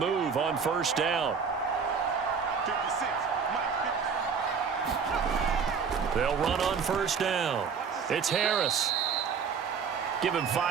on 1st down. They'll run on 1st down. It's Harris. Give him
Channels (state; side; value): quieter; left; 6.1 dB